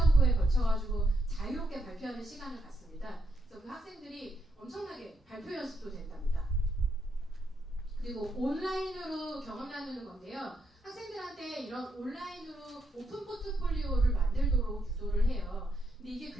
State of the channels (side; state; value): both; normal; correlation 0.79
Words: 걸쳐가지고 자유롭게 발표하는 시간을 갖습니다. 그래서 그 학생들이 엄청나게 발표 연습도 된답니다. 그리고 온라인으로 경험 나누는 건데요. 학생들한테 이런 온라인으로 오픈 포트폴리오를 만들도록 유도를 해요. 근데 이게